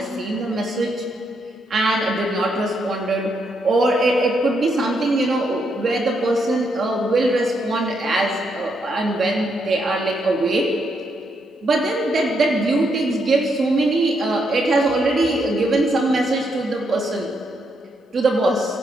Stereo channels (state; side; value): normal; both; correlation 0.78